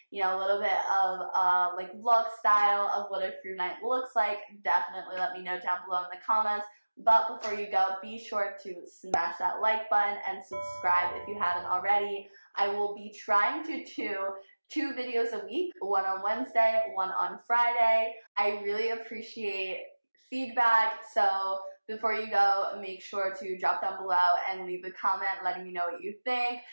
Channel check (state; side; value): inverted; both; correlation -1.00